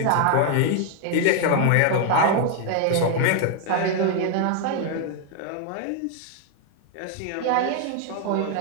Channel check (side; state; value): both; different; correlation 0.00